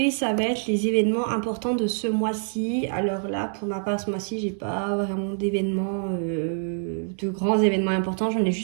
ça va être les événements importants de ce mois-ci. Alors là, pour ma part, ce mois-ci, j'ai pas vraiment d'événements, de grands événements importants. J'en ai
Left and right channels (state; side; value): silent; left; 61 dB below the other